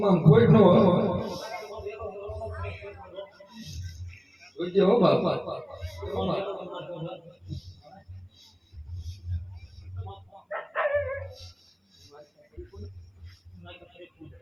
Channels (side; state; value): both; identical; correlation 1.00